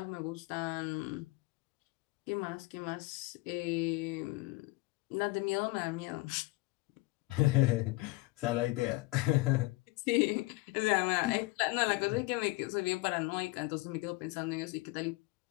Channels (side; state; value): right; quieter; 22.5 dB